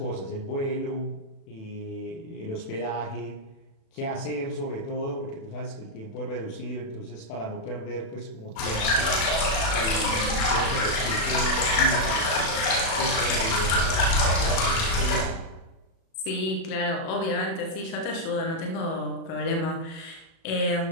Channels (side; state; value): right; late; 36 ms